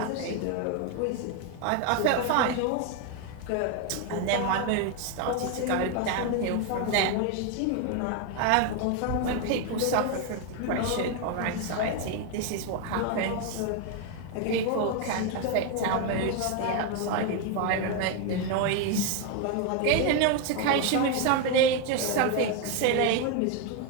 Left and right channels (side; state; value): both; different; correlation 0.01